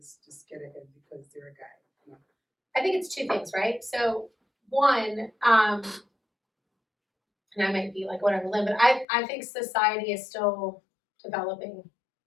just get ahead because they're a guy. No. I think it's 2 things, right? So one, and I might be like whatever, Lynn, but I think society is still developing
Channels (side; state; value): right; drops out; at 9.1 s